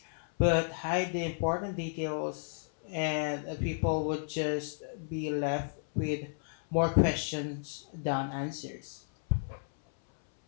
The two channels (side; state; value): right; silent; 56 dB below the other